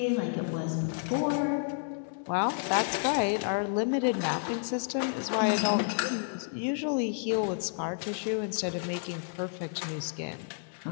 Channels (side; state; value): right; silent; digital silence